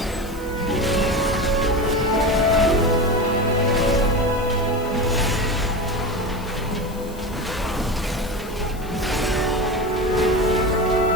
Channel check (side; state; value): left; noise; hiss, 20 dB below the sound